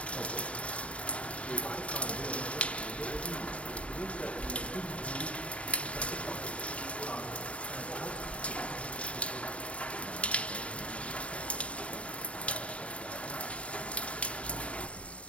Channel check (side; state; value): right; late; 0.063 ms